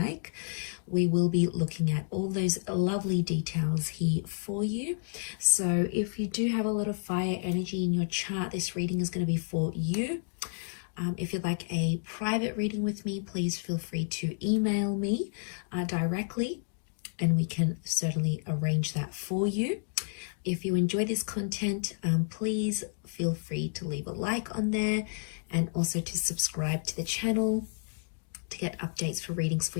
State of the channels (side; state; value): right; silent; digital silence